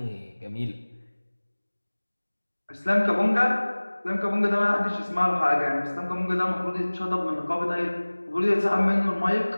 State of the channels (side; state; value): both; inverted; correlation -1.00